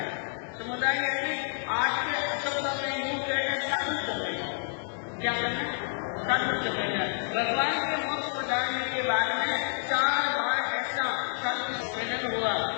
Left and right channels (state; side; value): silent; right; digital silence